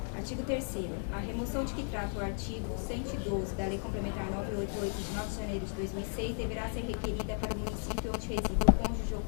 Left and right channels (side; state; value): right; silent; 55 dB below the other